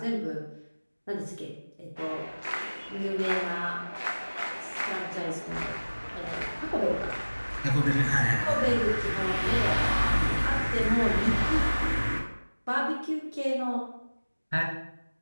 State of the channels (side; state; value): both; inverted; correlation -1.00